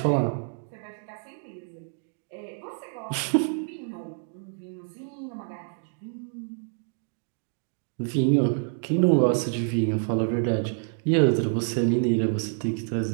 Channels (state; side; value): silent; left; 60 dB below the other